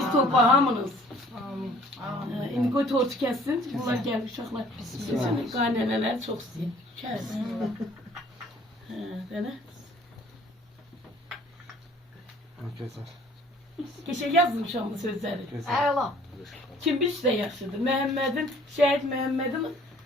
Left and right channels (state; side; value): normal; both; correlation 0.55